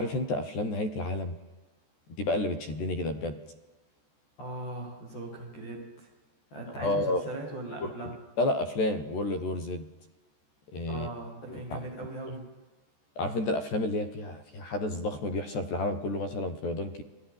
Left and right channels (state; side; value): late; right; 14 ms